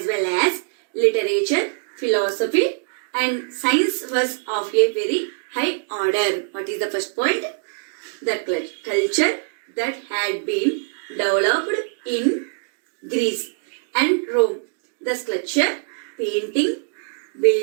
well as literature, philosophy and science was of a very high order. What is the first point? The culture that had been developed in Greece and Rome. The sculpture, painting,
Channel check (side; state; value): left; silent; digital silence